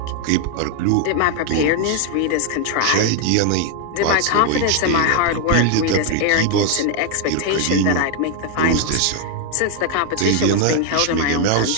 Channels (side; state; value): both; different; correlation 0.00